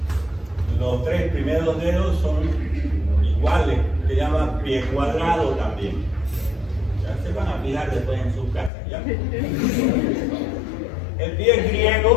los tres primeros dedos son iguales. Se llama pie cuadrado también. Ya se van a fijar después en sus casas. ¿Ya? El pie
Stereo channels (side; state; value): right; drops out; at 8.7 s